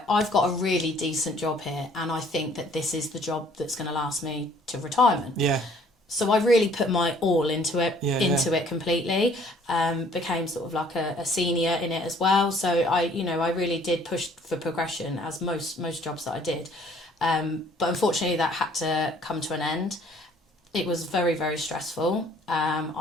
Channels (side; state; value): both; normal; correlation 0.58